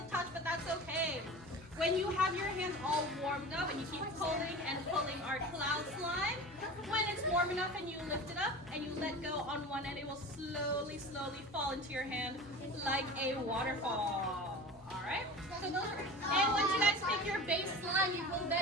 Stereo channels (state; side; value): normal; both; correlation 0.35